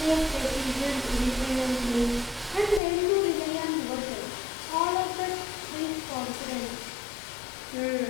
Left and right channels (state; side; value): drops out; right; at 2.8 s